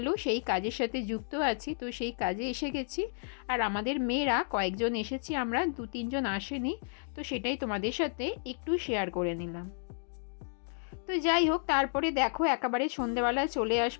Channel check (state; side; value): silent; right; digital silence